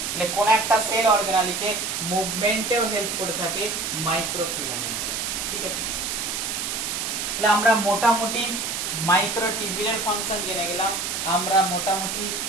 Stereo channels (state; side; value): noise; right; hiss, 2 dB below the sound